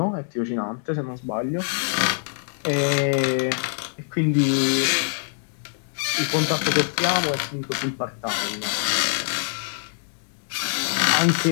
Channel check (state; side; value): silent; right; 62 dB below the other